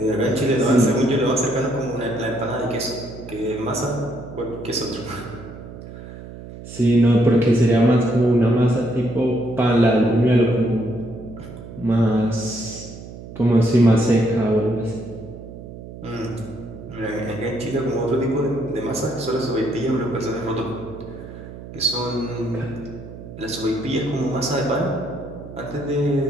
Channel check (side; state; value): right; noise; hum, 14 dB below the sound